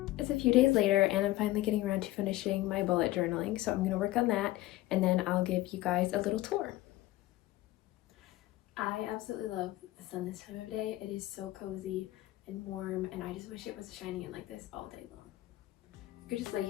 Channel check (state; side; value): quieter; right; 16.9 dB